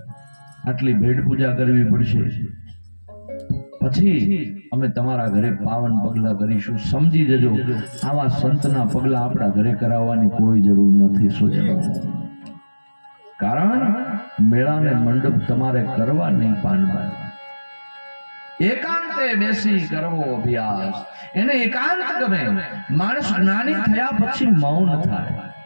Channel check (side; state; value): both; inverted; correlation -1.00